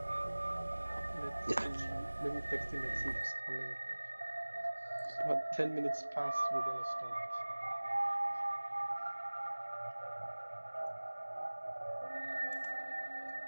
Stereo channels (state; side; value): inverted; both; correlation -1.00